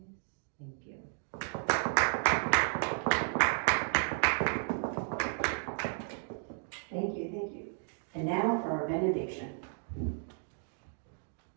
Thank you. Thank you, thank you. And now for our benediction.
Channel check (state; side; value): silent; left; 55 dB below the other